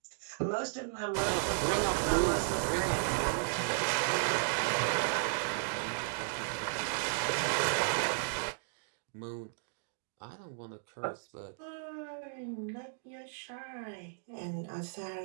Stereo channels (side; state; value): left; silent; digital silence